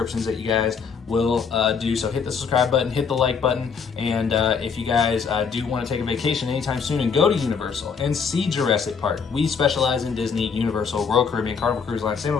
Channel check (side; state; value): right; quieter; 5.9 dB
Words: that you guys will do. So hit the subscribe button, hit the like button, and if you guys do want to take a vacation anytime soon and go to Universal and see Jurassic Park, we specialize in Disney, Universal, Royal Caribbean, Carnival Cruise Line,